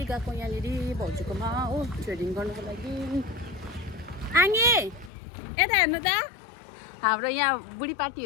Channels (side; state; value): right; drops out; at 5.1 s